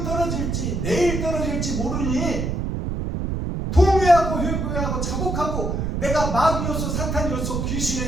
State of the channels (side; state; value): right; noise; rumble, 1 dB below the sound